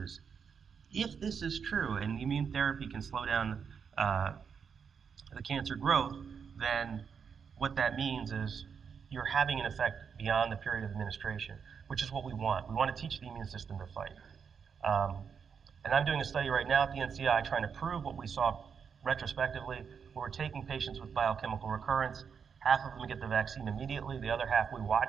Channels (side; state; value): left; quieter; 6.6 dB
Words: if this is true and the immune therapy can slow down the cancer growth, then what that means is you're having an effect beyond the period of administration, which is what we want. We want to teach the immune system to fight. And I'm doing a study right now at the NCI trying to prove what we saw retrospectively, where we're taking patients with biochemical recurrence. Half of them get the vaccine immediately. The other half we